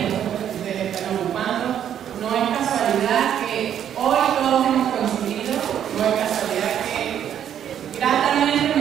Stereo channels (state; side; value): quieter; left; 9.7 dB